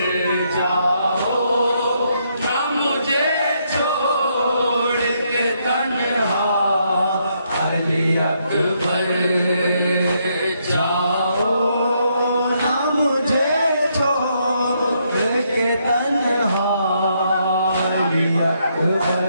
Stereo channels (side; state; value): both; inverted; correlation -0.75